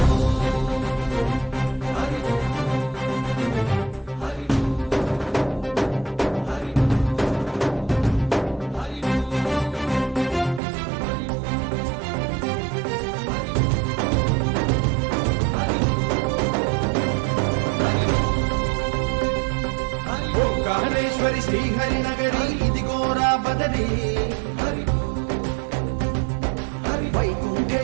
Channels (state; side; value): drops out; left; at 10.6 s